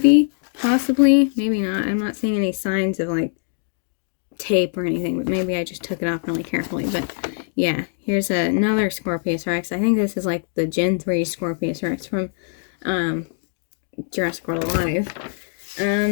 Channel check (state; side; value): silent; right; digital silence